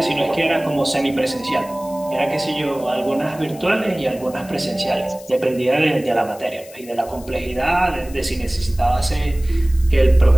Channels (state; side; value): noise; left; hiss, 20 dB below the sound